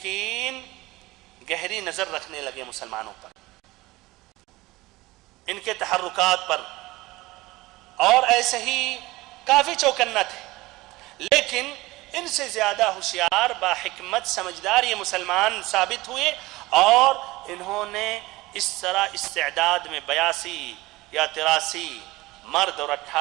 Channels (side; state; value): left; quieter; 19.9 dB